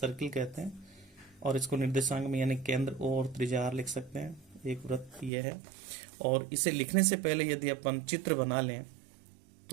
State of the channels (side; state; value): left; drops out; at 5.3 s